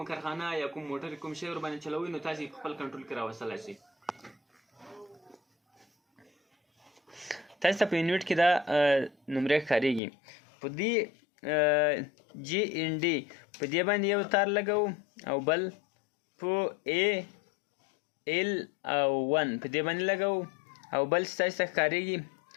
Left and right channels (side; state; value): right; drops out; at 10.0 s